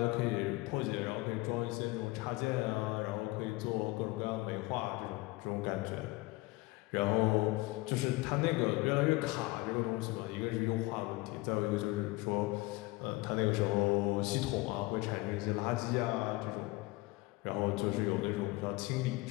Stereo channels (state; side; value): quieter; right; 21.5 dB